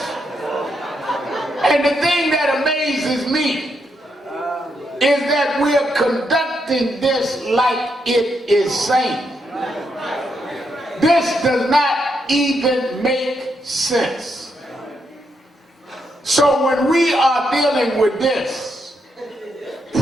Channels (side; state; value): both; normal; correlation 0.80